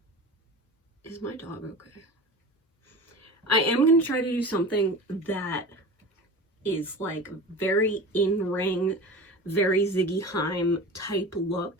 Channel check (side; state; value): both; normal; correlation 0.34